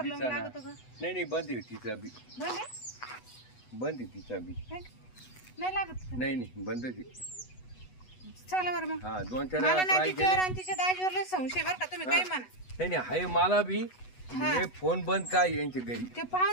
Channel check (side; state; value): right; late; 8.1 ms